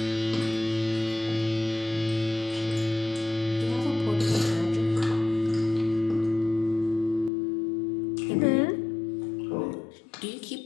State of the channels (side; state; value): right; drops out; at 7.3 s